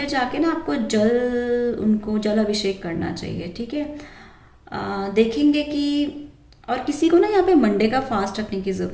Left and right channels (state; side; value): identical; both; correlation 1.00